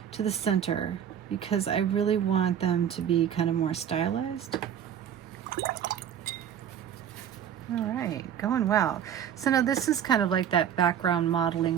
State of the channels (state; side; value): quieter; left; 9.2 dB